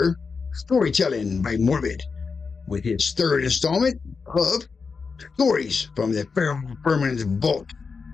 storytelling by Morbid with his third installment of Stories from the Feral Vermin's Vault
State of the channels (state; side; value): quieter; right; 5.0 dB